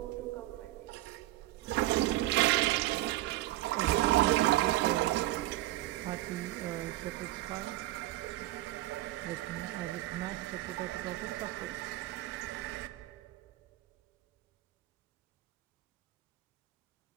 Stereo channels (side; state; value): left; quieter; 16.6 dB